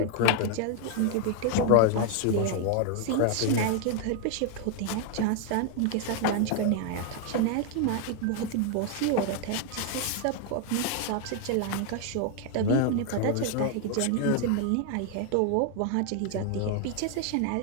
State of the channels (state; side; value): different; both; correlation 0.00